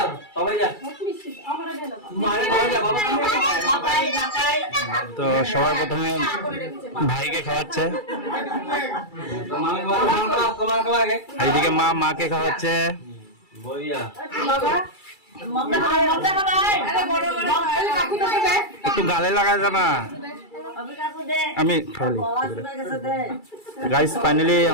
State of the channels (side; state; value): right; late; 2.3 ms